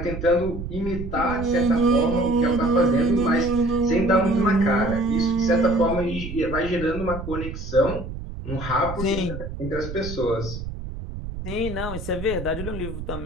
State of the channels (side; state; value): right; noise; rumble, 8 dB below the sound